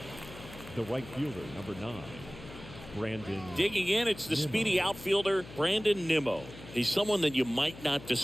the right fielder, number 9, Brandon. Digging in, it's the Nimmo. speedy outfielder, Brandon Nimmo. He's someone that you might not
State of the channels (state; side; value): noise; left; hum, 16 dB below the sound